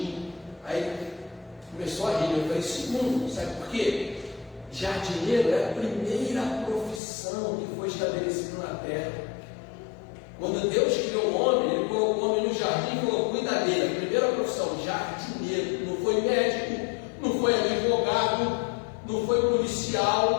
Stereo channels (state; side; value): drops out; right; at 7.0 s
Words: Aí começou a rir. Eu falei, segundo, sabe por quê? Jardineiro é a primeira profissão que foi estabelecida na terra. Quando Deus criou o homem, ele colocou o homem no jardim e falou, cuida dele. A primeira profissão, jardineiro. Não foi médico, não foi advogado, não foi